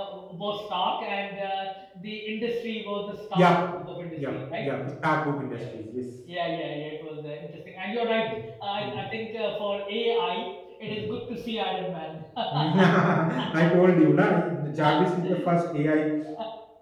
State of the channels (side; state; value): both; identical; correlation 1.00